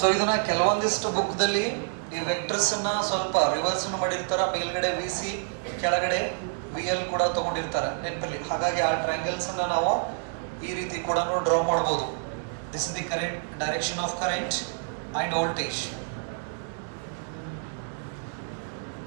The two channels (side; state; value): left; silent; digital silence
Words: ಇದನ್ನ ಕೆಲವೊಂದಿಷ್ಟು book ದಲ್ಲಿ ಈ vectors ಅನ್ನ ಸ್ವಲ್ಪ reverse ಮಾಡಿರ್ತಾರ, ಮೇಲ್ಗಡೆ VC ಕೆಳಗಡೆ VL ಕೂಡ ತಗೊಂಡಿರ್ತಾರೆ ನೆನಪಲ್ಲಿ. ಹಾಗಾಗಿ ಆ ಟ್ರಯಾಂಗಲ್ಸ್ ಅನ್ನ ನಾವು ಈ ರೀತಿ ಕೂಡ ಡ್ರಾ ಮಾಡಬಹುದು. This is the current, direction of current and voltage.